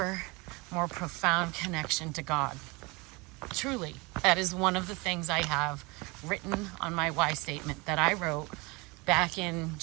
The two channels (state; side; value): quieter; left; 26.3 dB